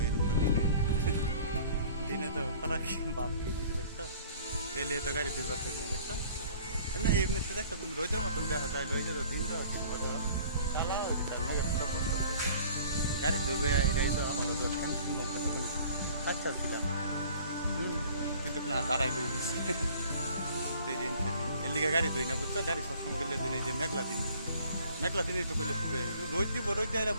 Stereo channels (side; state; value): both; inverted; correlation -0.51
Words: এরকম দিনে দিনে তো খারাপ বাপ কি দিতে দেখছো এলে তো গাড়ি দুইবার থাকবে দেখছো না এমনিতে দেখছো তুমি রোজের মতন দেখা যায় লইছে তো দিন তো কালা হয়েছে তার মেঘের ছোটো করতেছে গাড়ি ধরবে এটাই তো আমাদের তো টেনশন আচ্ছা ছিলাম কিন্তু না দাঁড়াই করে দিচ্ছে সেই দিন এর লিগে গাড়ি ধুই না বুঝছো গাড়ি সবসময় গেলে দিন এই যে মেঘলা দিনই তো করলে খুবই রোদ দিব রোদ দিয়ে